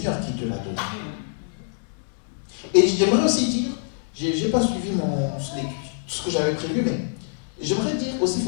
qui te l'a donnée. Et j'aimerais aussi dire, je n'ai pas suivi ce que j'avais prévu, mais j'aimerais dire aussi, il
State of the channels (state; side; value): silent; right; digital silence